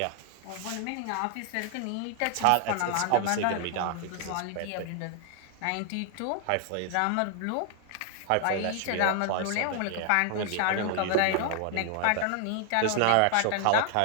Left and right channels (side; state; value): both; different; correlation 0.00